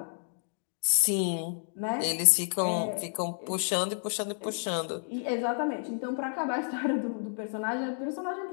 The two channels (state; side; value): silent; right; 57 dB below the other